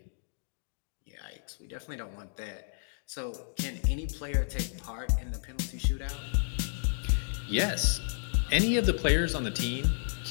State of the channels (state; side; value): silent; right; digital silence